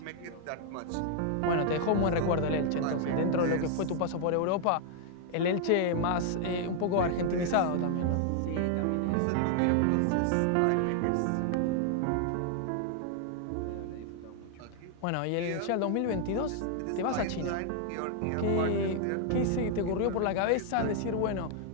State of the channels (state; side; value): different; both; correlation 0.00